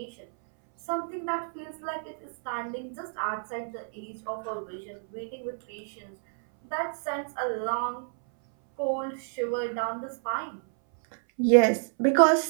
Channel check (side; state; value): left; silent; 59 dB below the other